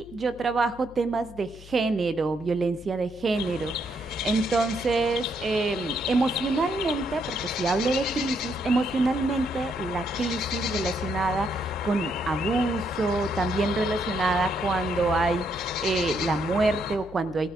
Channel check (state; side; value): noise; left; hum, 19 dB below the sound